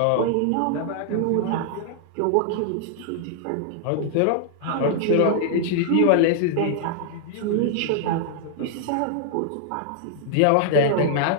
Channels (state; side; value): different; both; correlation -0.01